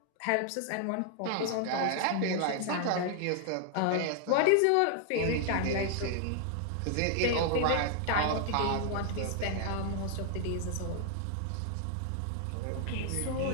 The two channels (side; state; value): both; different; correlation 0.00